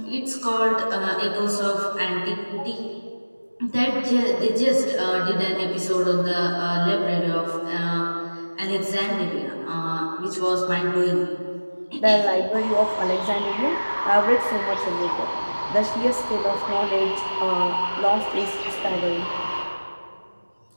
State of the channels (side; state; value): both; inverted; correlation -1.00